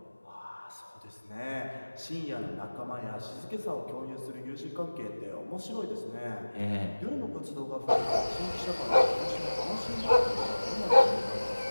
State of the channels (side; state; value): both; inverted; correlation -1.00